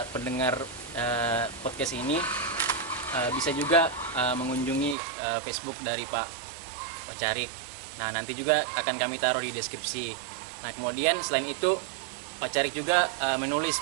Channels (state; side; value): drops out; left; at 5.0 s